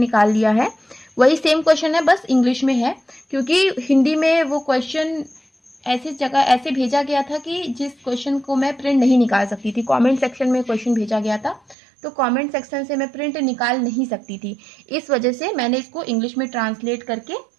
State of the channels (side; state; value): left; drops out; at 11.8 s